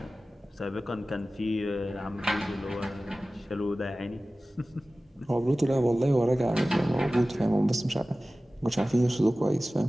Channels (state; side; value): normal; both; correlation 0.97